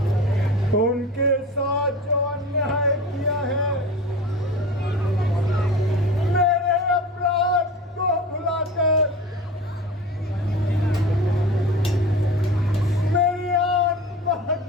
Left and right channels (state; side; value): normal; both; correlation 0.35